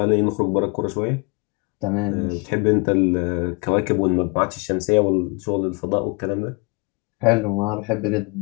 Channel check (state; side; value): quieter; right; 30.9 dB